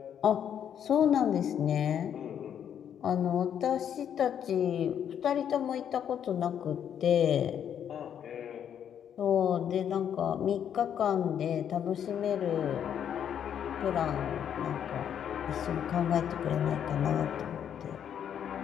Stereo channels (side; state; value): right; quieter; 9.0 dB